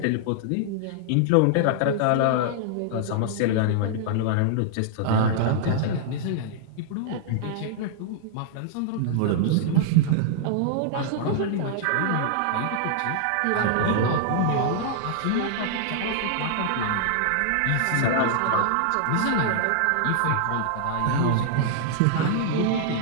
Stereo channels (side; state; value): both; different; correlation -0.01